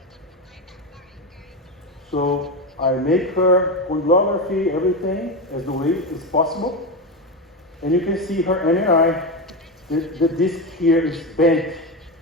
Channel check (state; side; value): normal; both; correlation 0.15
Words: So I make her condylography, everything as the way is possible. And you can see her MRI. The disc here is bent.